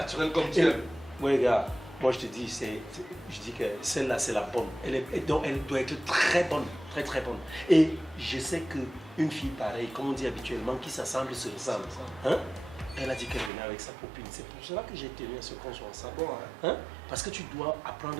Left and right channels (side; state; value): left; drops out; at 13.5 s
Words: comme tu es. Oui, gars, moi je te dis, je dis que celle-là c'est la bonne. Donc elle doit être très bonne, très bonne. Et je sais qu'une fille pareille, comme on dit habituellement, qui s'assemble se ressemble. Hein? Elle a dit qu'elle venait avec sa copine. C'est pour cela que j'ai tenu à ce qu'on soit ensemble. Bon, hein? Parce que tu dois